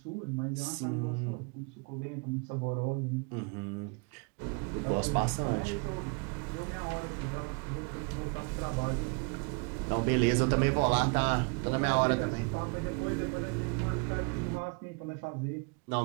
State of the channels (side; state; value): left; quieter; 33.5 dB